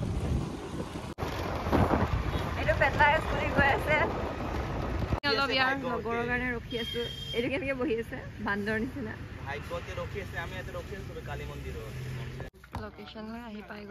এইটো পেটলাই স্কুটি গৈ আছে অলপ ইয়াৰ লগৰৰ কাৰণে ৰখি আছোঁ এইটো কেনেকৈ বহি আছে বান্দৰ নিচিনা ভাগ্যতে ৰখি আছে আমি ইয়াতে ৰখি আছোঁ কালী মন্দিৰত লোকেশ্যন হৈ আহি পাই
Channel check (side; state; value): both; identical; correlation 1.00